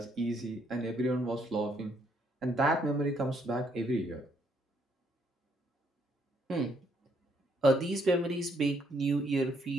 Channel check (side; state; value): both; normal; correlation 0.71